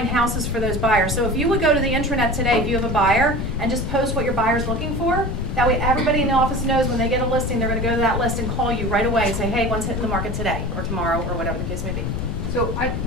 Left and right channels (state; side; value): noise; left; rumble, 3 dB below the sound